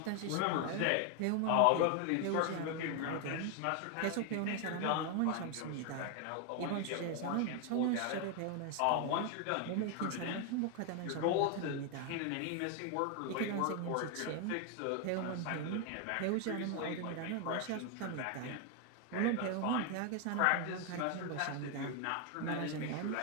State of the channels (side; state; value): both; different; correlation 0.01